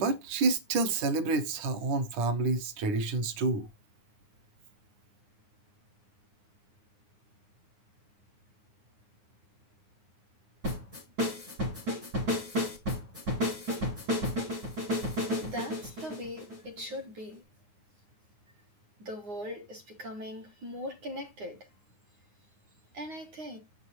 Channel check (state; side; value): late; left; 9.7 ms